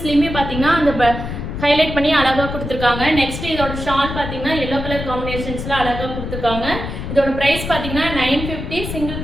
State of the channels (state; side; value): noise; left; rumble, 6 dB below the sound